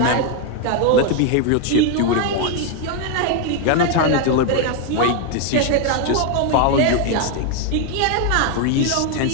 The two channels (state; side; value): different; both; correlation 0.01